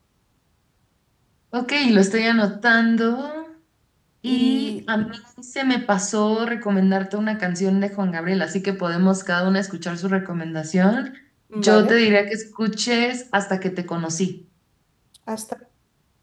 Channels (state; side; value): identical; both; correlation 1.00